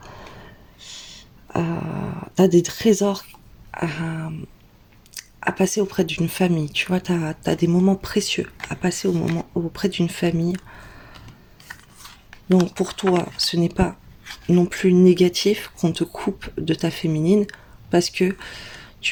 t'as des trésors à, à passer auprès d'une famille. Tu vois, t'as des moments précieux à passer auprès d'une famille. Donc, pour toi, ce n'est pas non plus négatif qu'on te coupe de ta féminine parce que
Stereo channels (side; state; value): both; identical; correlation 1.00